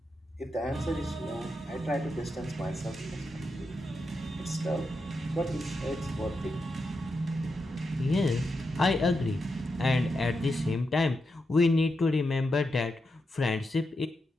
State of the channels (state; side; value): normal; both; correlation 0.86